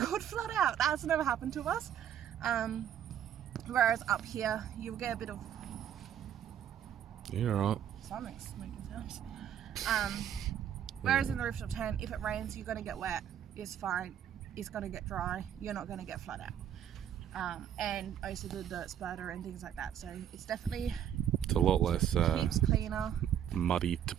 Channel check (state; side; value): quieter; left; 9.9 dB